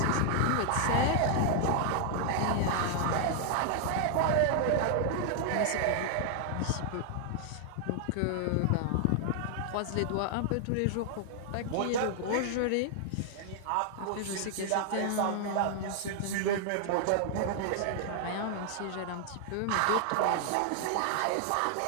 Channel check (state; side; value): different; both; correlation 0.00